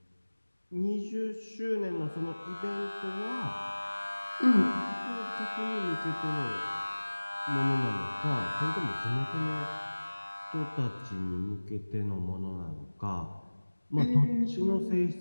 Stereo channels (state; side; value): inverted; both; correlation -1.00